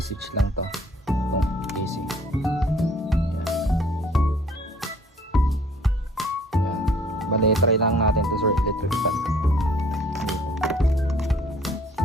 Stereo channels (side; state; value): both; normal; correlation 0.56